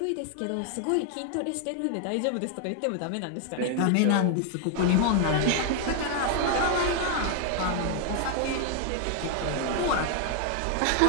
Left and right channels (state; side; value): different; both; correlation 0.00